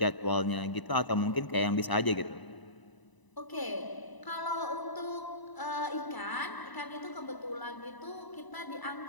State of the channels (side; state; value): right; late; 1.0 ms